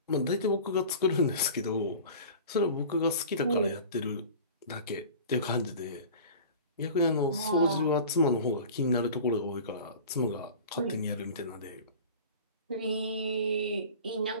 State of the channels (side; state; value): both; inverted; correlation -0.39